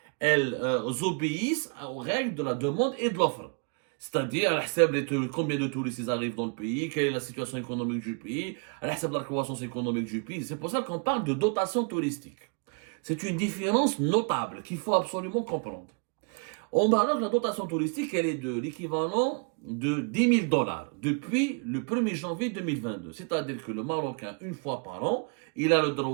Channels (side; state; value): left; quieter; 37.5 dB